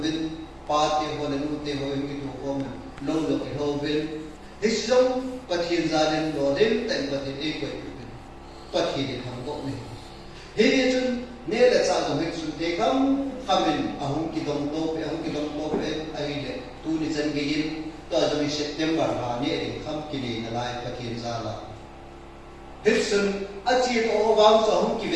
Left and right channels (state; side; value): identical; both; correlation 1.00